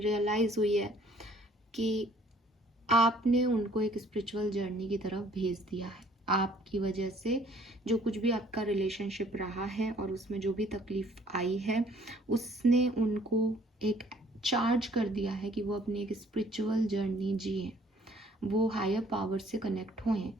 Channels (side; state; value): both; normal; correlation 0.59